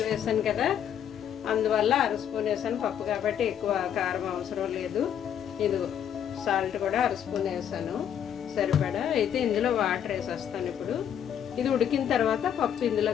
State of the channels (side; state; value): right; quieter; 9.2 dB